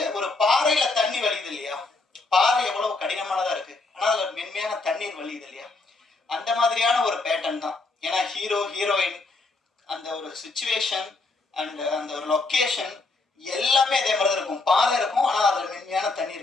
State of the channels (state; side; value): quieter; right; 3.6 dB